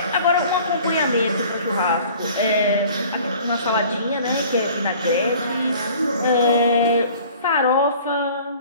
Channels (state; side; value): inverted; both; correlation -0.49